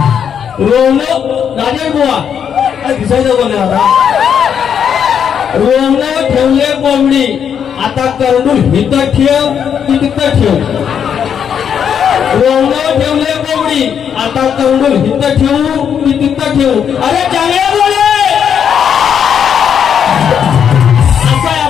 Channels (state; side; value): quieter; right; 8.0 dB